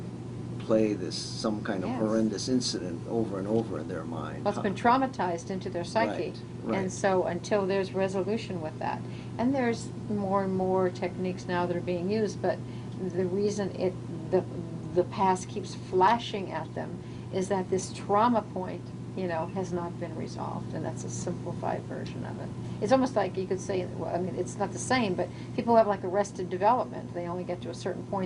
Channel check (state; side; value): identical; both; correlation 1.00